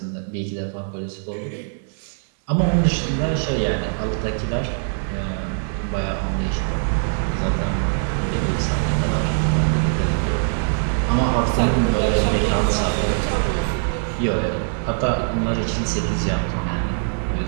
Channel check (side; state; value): left; silent; 64 dB below the other